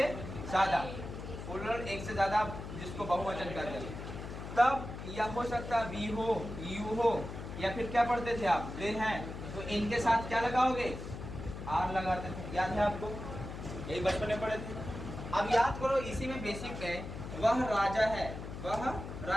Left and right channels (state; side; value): noise; left; hum, 9 dB below the sound